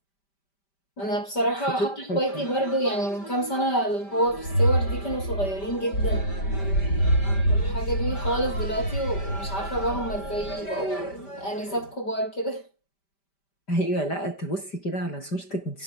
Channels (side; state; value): right; late; 5.1 ms